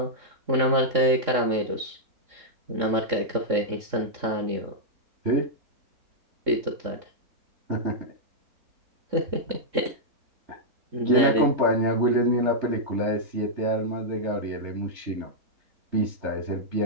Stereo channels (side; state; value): left; late; 3.6 ms